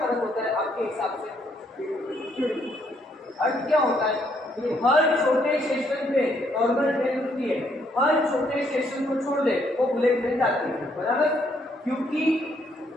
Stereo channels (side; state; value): both; normal; correlation 0.71